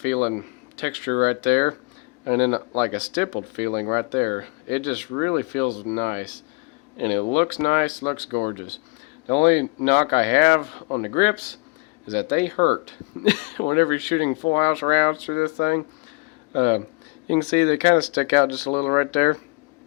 texture right there, and then like a stippled feeling right there. It just really feels nice, and it looks nice, looks gorgeous. The only knock I have on the grips is that they hurt whenever you're shooting full house rounds through this thing. You can see they kind of stick out just a little right there.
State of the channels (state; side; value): quieter; right; 28.3 dB